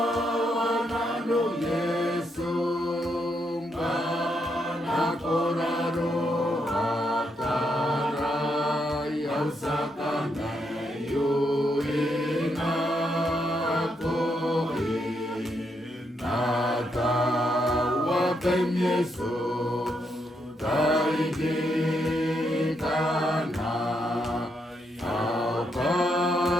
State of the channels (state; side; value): normal; both; correlation 0.79